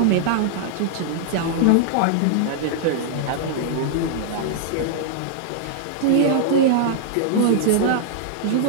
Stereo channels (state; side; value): different; both; correlation -0.01